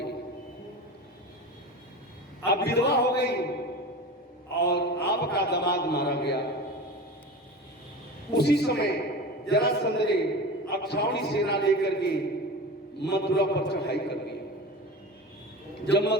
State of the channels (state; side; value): normal; both; correlation 0.31